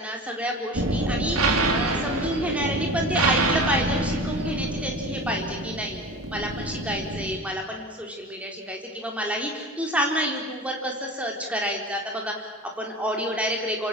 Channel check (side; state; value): both; normal; correlation 0.34